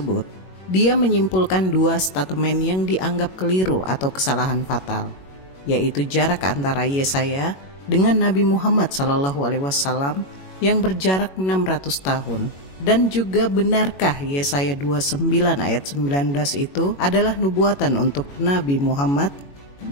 dia menyimpulkan dua statement yang dianggap keliru atau kesalahan fatal, yaitu jarak antara Yesaya dengan Nabi Muhammad SAW yang berjarak 600 tahun. Dan juga benarkah Yesaya 29 ayat 19 itu adalah nubuatan untuk Nabi Muhammad?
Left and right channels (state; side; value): late; right; 21 ms